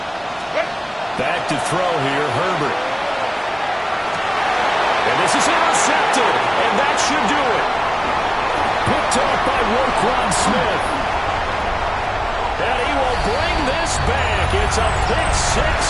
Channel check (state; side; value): identical; both; correlation 1.00